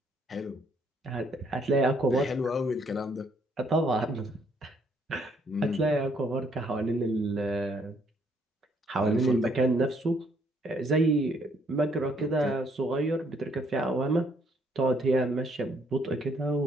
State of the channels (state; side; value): normal; both; correlation 0.68